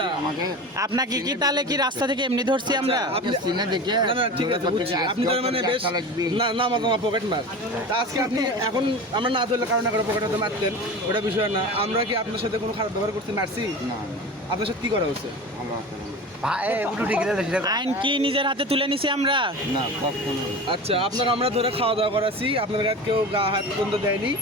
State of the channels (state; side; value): normal; both; correlation 0.32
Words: আমাকে আপনাকে কি তাহলে কি রাস্তা থেকে এমনি ধরছি আমরা? আপনি সিনে দেখে না না ঠিক আছে বুঝছি, আপনি তার মানে বেশ না নামাজ আমার পকেট মার। তা আজকে আপনি এখন আমরা না ধরলে কারণ করে পকেট হাতে মারতেন, ওটা বিষয় না। আমরা কি আপনার সাথে কোনো খারাপ ব্যবহার করতে মারছি? না আপনার সাথে কি করা হচ্ছে? আমার আইন কি নিজের হাতে তুলে নিছি আমরা? না কখনো। আচ্ছা, আপনাকে আমরা ধরে খাওয়া দাওয়া করাছি, আপনার গায়ে কেউ গা হাত পর্যন্ত দেয়নি।